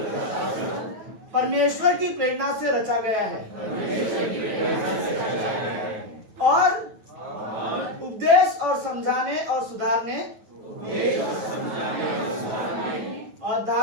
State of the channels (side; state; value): left; late; 9.2 ms